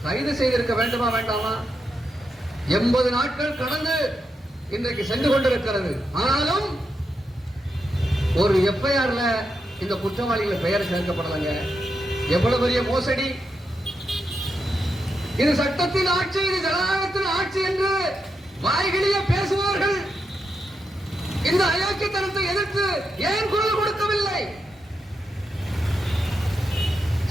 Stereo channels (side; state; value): both; normal; correlation 0.85